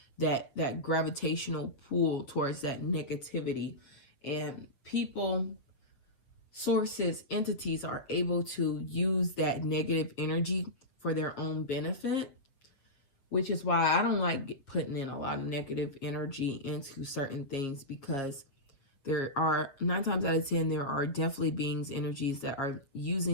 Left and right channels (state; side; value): late; right; 7.5 ms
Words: that gravitational pull towards that negativity. And people, sources, entities are able to use that negative energy for their own benefit, which is why I don't like putting in a lot of negative energy into certain things, because there are 9 times out of 10, there are definitely beings, energies that are